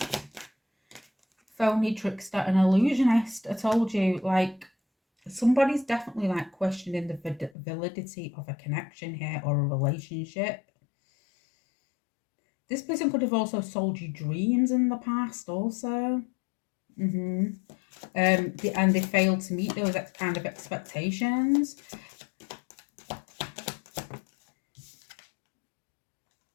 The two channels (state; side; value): drops out; right; at 7.5 s